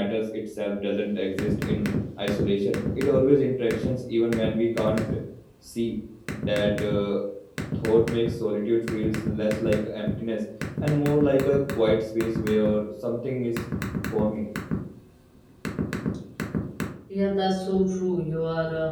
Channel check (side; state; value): both; identical; correlation 1.00